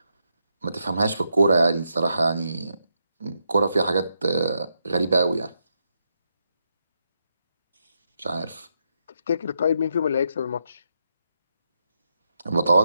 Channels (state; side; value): inverted; both; correlation -0.82